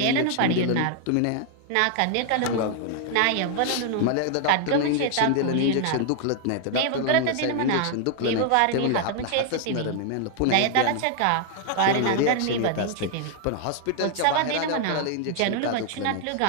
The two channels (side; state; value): both; different; correlation 0.00